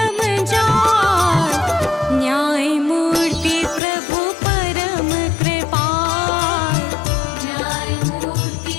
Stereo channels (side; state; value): right; drops out; at 3.8 s